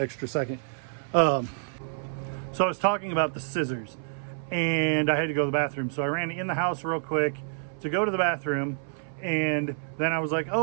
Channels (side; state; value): left; silent; 59 dB below the other